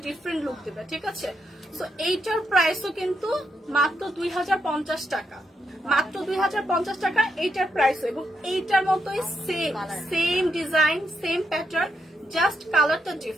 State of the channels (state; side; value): normal; both; correlation 0.81